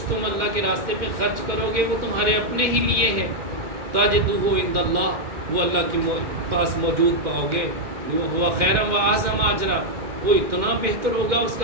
تم اللہ کے راستے پہ خرچ کرو گے وہ تمہارے اپنے ہی لیے ہے، تجدوہ عند اللہ، وہ اللہ کے پاس موجود پاؤ گے۔ وہ ہوا خیرا و اعظم اجرا، وہ اتنا بہتر ہوگا، اس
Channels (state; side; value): late; left; 2.2 ms